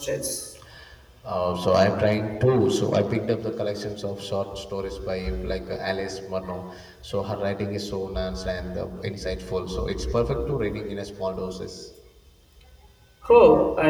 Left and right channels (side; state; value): both; identical; correlation 1.00